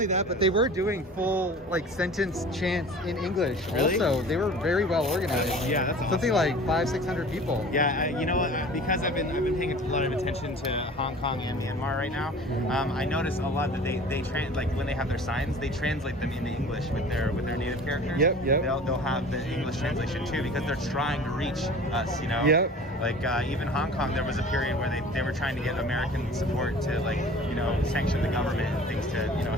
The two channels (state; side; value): normal; both; correlation 0.43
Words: that, but they were doing full sentence chants in English. Really? Also, they were very well organized. Yeah, that's awesome. Something like 500-600 people. Yeah, because I've been paying a lot of attention to Hong Kong and Myanmar right now. I notice a lot that they when they have their signs, they translate them into English with their native characters. Yep. They'll have the English translation too, because they're trying to reach us. Yep. Like even Hong Kong, there was a period where they were trying to get American support to sanction the government and things to